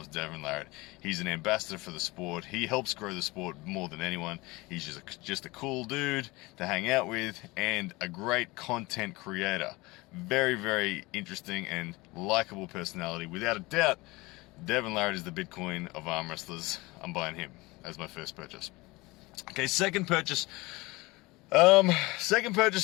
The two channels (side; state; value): right; quieter; 22.5 dB